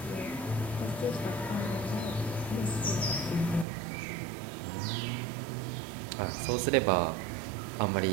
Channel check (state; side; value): drops out; left; at 3.7 s